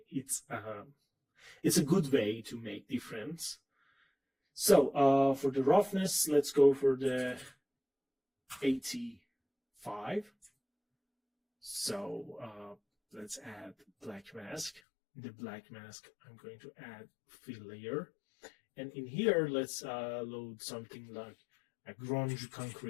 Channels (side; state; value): right; drops out; at 14.8 s